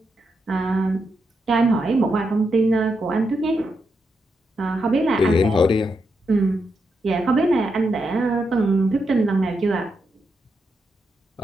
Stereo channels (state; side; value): normal; both; correlation 0.83